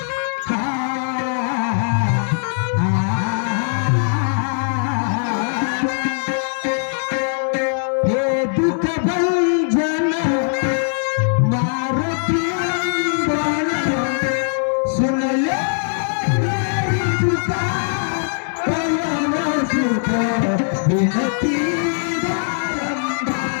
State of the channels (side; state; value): right; silent; digital silence